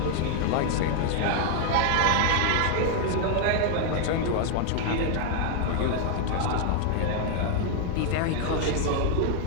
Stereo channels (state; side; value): different; both; correlation 0.00